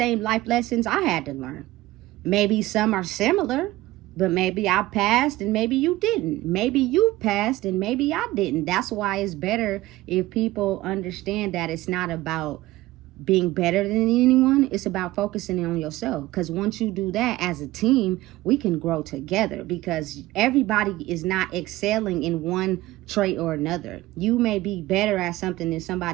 life lessons I had to learn. Maybe some are similar, but maybe I passed and maybe you didn't. Maybe you passed and maybe I didn't. That's why it's better if people understand that it's not about being better than anyone. It's about focusing on yourself, because once you do that as a team, we can grow together, because everybody is not excelling in one trait or another. You may be better at something than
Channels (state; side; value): quieter; left; 17.7 dB